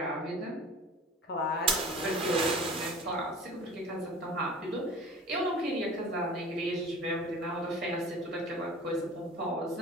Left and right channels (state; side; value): normal; both; correlation 0.40